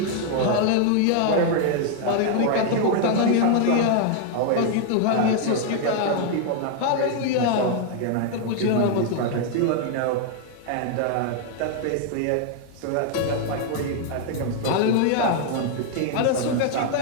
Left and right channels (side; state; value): both; different; correlation 0.00